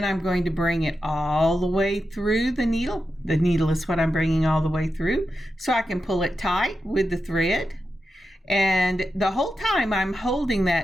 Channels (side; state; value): both; normal; correlation 0.89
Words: I'm going to bring it all the way through the needle. The needle is what I'm bringing all the way through so I can pull it tight with the thread. And the whole time I'm holding